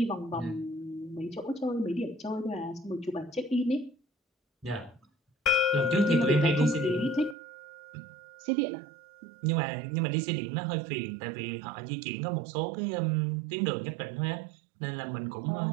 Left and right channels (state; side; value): drops out; left; at 7.4 s